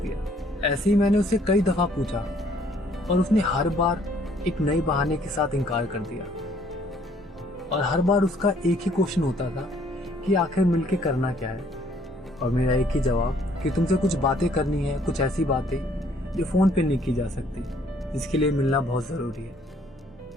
ऐसे ही मैंने उससे कई दफ़ा पूछा, और उसने हर बार एक नए बहाने के साथ इनकार कर दिया। और हर बार उसका एक ही क्वेश्चन होता था कि आखिर मिलके करना क्या है, और मेरा एक ही जवाब कि तुमसे कुछ बातें करनी है, कुछ ऐसी बातें जो फ़ोन पे नहीं की जा सकती, जिसके लिए मिलना बहुत ज़रूरी है।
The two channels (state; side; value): normal; both; correlation 0.63